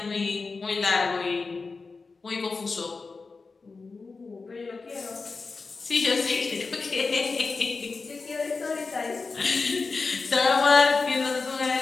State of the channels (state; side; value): quieter; right; 4.3 dB